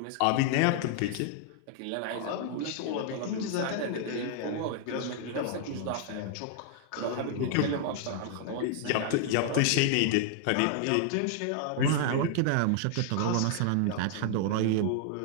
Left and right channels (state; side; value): different; both; correlation 0.00